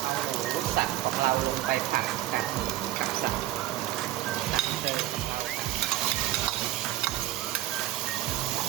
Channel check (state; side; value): quieter; left; 14.9 dB